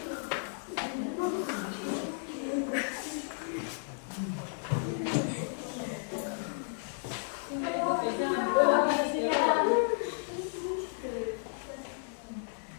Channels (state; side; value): silent; right; digital silence